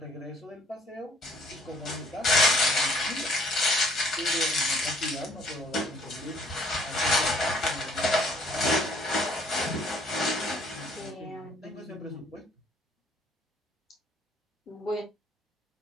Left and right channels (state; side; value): normal; both; correlation 0.60